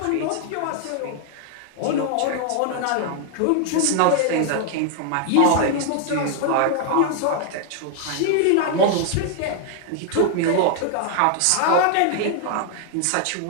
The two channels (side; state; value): both; different; correlation 0.00